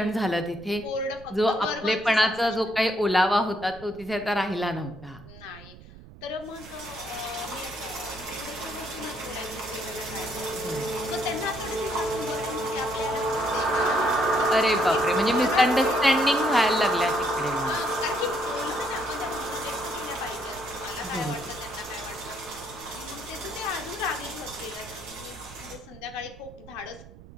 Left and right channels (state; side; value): noise; right; rumble, 19 dB below the sound